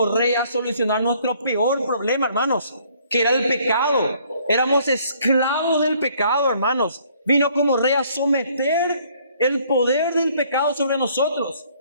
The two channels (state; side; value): inverted; both; correlation -0.62